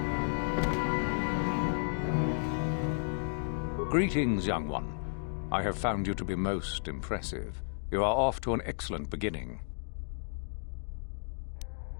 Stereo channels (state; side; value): silent; right; digital silence